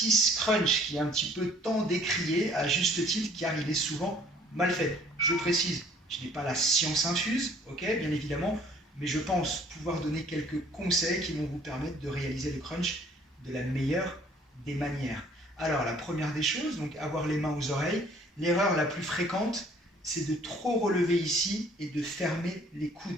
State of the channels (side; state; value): both; normal; correlation 0.56